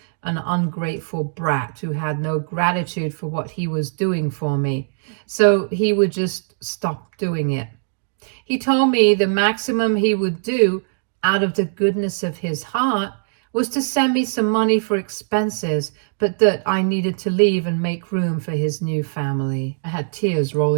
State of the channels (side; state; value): left; silent; digital silence